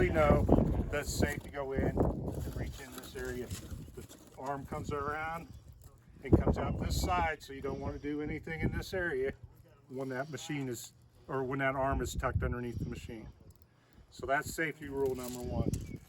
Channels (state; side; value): identical; both; correlation 1.00